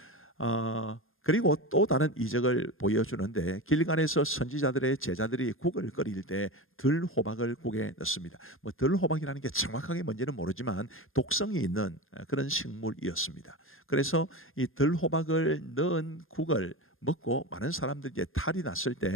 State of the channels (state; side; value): late; right; 0.60 ms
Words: 그리고 또 다른 이적을 보여주는데, 길갈에서 선지자들의 제자들이 국을 끓일 때 들호박을 국에 넣습니다. 들호박이라는 게 정확하게 뭔지는 모르지만 독성이 있는 그런 식물이었습니다. 그래서 이 들호박을 넣은 국을 먹고 많은 사람들이 이제 탈이 났을